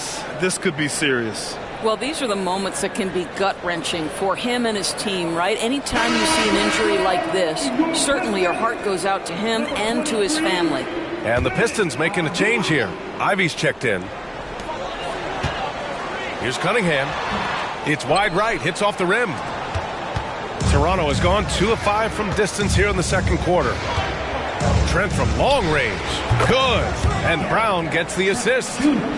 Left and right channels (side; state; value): both; identical; correlation 1.00